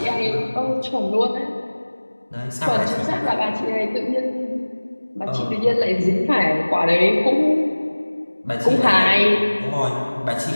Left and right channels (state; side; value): inverted; both; correlation -1.00